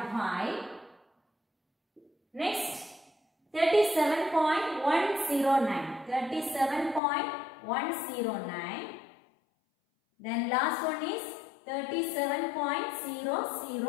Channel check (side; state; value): right; drops out; at 7.0 s